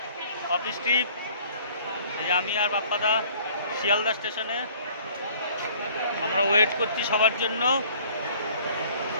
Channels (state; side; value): inverted; both; correlation -0.53